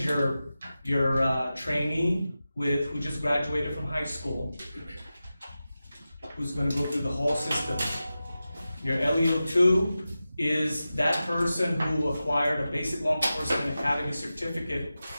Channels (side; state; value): both; inverted; correlation -0.94